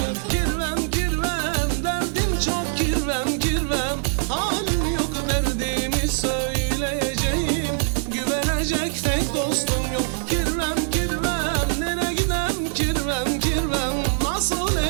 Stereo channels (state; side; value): silent; left; digital silence